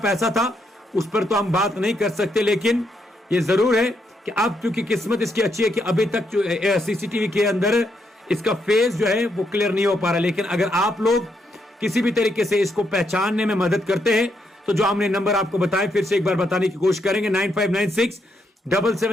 था उस पर तो हम बात नहीं कर सकते, लेकिन ये जरूर है कि अब क्योंकि किस्मत इसकी अच्छी है कि अभी तक जो सीसीटीवी के अंदर इसका फेस जो है वो क्लियर नहीं हो पा रहा। लेकिन अगर आप लोग किसी भी तरीके से इसको पहचानने में मदद करते हैं, तो जो हमने नंबर आपको बताए फिर से एक बार बताने की कोशिश करेंगे,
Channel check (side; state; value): both; normal; correlation 0.78